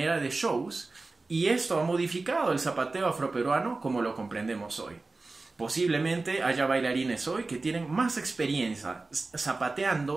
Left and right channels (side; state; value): left; quieter; 3.5 dB